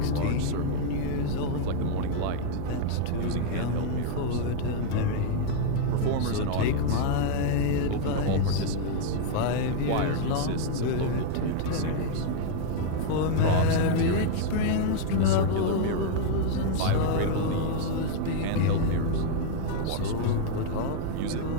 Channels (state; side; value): different; both; correlation -0.01